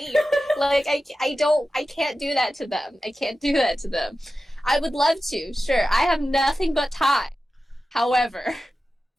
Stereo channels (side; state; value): both; normal; correlation 0.93